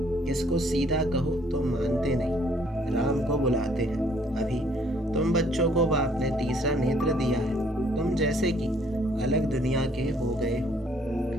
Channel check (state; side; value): normal; both; correlation 0.63